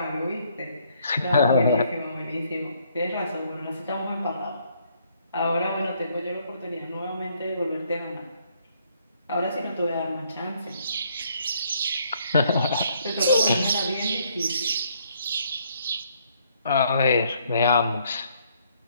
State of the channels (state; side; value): inverted; both; correlation -0.68